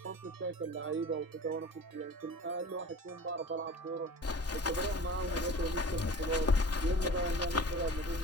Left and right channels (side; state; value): both; normal; correlation 0.40